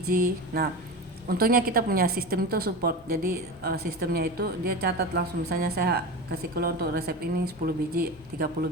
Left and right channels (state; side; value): normal; both; correlation 0.26